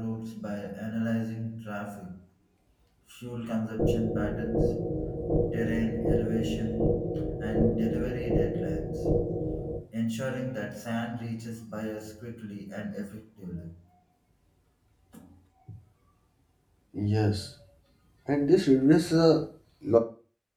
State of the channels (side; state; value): both; identical; correlation 1.00